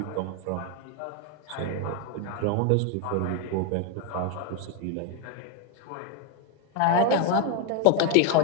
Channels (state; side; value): different; both; correlation 0.01